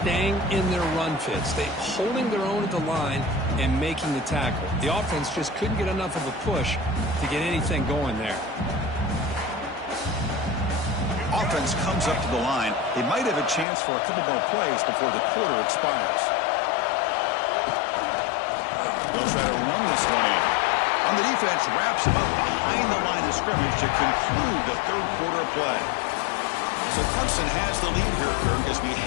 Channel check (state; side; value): drops out; right; at 13.7 s